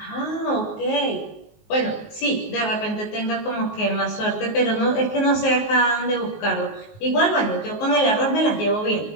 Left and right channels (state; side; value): late; right; 19 ms